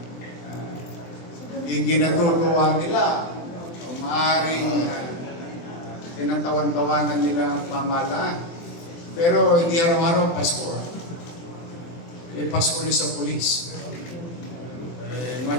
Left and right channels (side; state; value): right; late; 23 ms